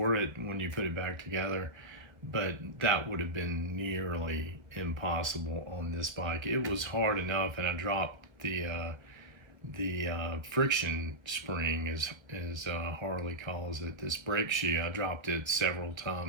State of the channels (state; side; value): late; left; 1.5 ms